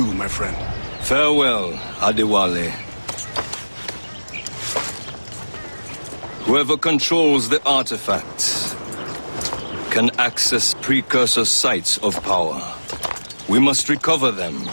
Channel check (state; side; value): inverted; both; correlation -1.00